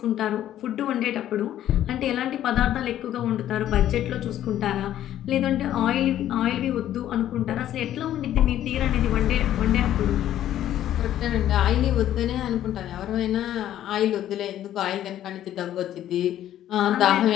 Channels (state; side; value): quieter; right; 12.0 dB